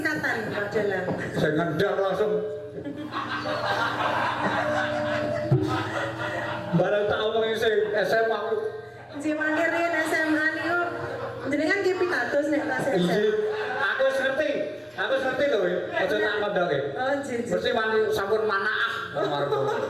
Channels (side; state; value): both; identical; correlation 1.00